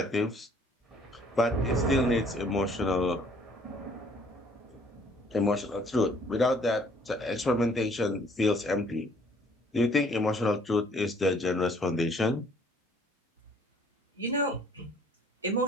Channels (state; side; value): normal; both; correlation 0.59